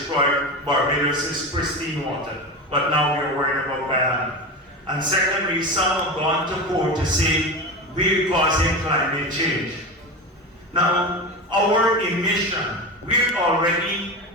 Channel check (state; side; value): normal; both; correlation 0.24